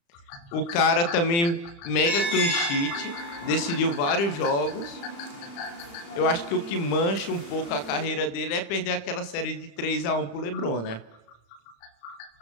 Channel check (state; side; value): late; right; 35 ms